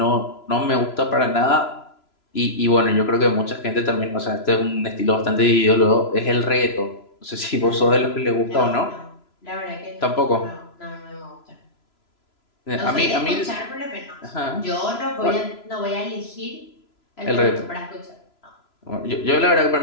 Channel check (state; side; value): late; right; 3.0 ms